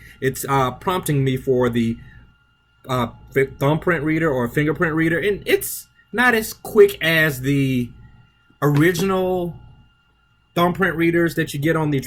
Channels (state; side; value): identical; both; correlation 1.00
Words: it's prompting me for the thumbprint reader or fingerprint reader, and it's not as quick as the original thumbprint readers that you get on the